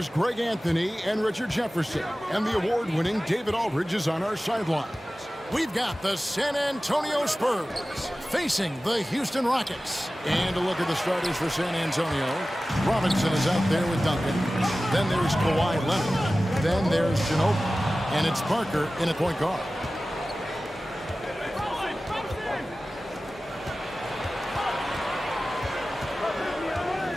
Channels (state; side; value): normal; both; correlation 0.96